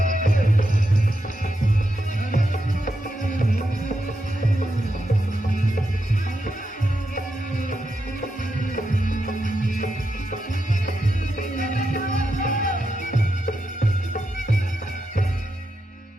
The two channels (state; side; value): normal; both; correlation 0.85